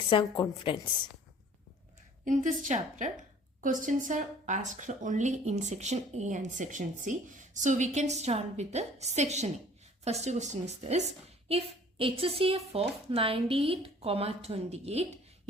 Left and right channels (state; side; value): normal; both; correlation 0.51